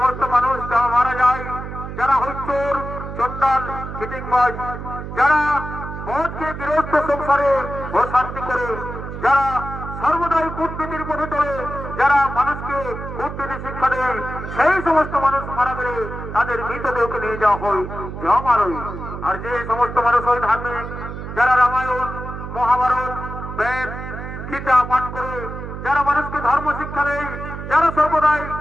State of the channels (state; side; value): noise; right; hum, 8 dB below the sound